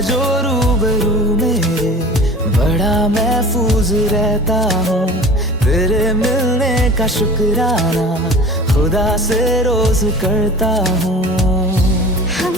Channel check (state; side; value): normal; both; correlation 0.40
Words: जो रूबरू मेरे, बड़ा महफूज रहता हूँ। तेरे मिलने का शुक्राना खुदा से रोज करता हूँ।